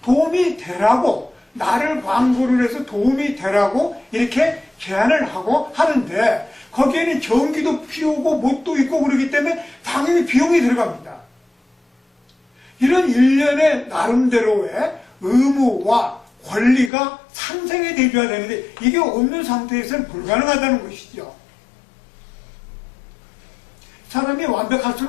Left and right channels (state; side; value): drops out; right; at 16.9 s